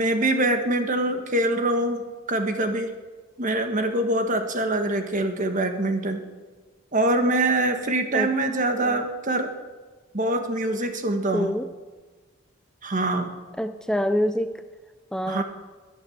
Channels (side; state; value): both; normal; correlation 0.25